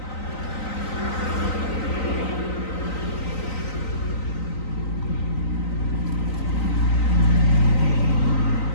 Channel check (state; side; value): late; right; 3.9 ms